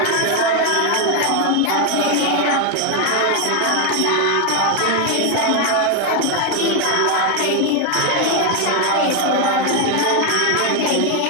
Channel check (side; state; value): both; different; correlation 0.01